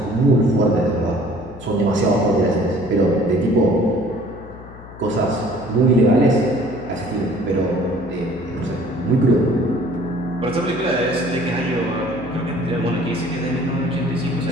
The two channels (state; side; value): noise; left; hum, 17 dB below the sound